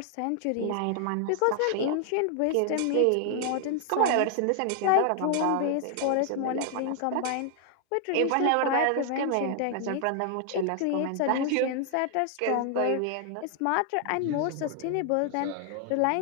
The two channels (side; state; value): both; different; correlation 0.00